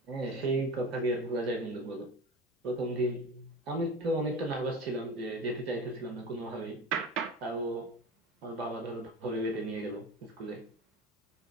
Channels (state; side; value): normal; both; correlation 0.31